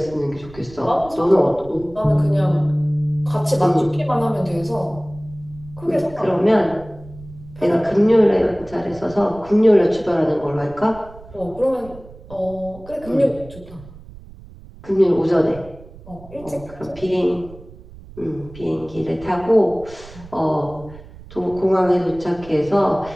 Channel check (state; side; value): noise; right; rumble, 19 dB below the sound